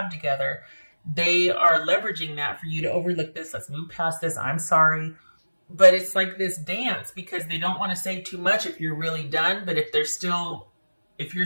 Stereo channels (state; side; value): inverted; both; correlation -1.00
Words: together, they are leveraging that for you to overlook this. Let's move past this. I'm sorry. But it's like this dance because they don't want to say too much if you're really done. But if you're still,